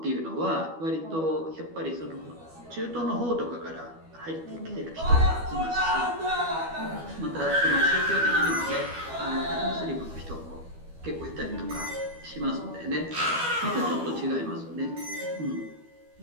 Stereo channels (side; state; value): left; late; 12 ms